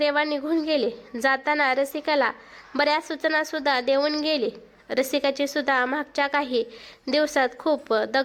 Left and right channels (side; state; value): both; identical; correlation 1.00